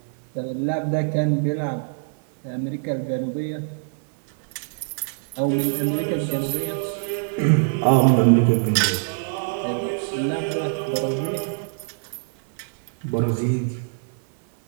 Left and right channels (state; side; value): silent; left; 63 dB below the other